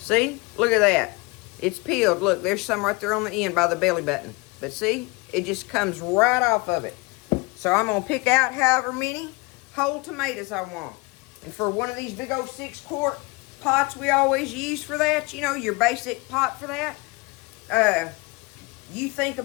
Look at that. It's peeled. Look, there's some right there on the end by the belly button. But see? It just comes right off of it. So I'm going to pick out however many whole tomatoes I want. And for one of these big old 6-quart pots we always use for that, you know, your basic pot for that, you think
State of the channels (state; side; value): quieter; right; 26.4 dB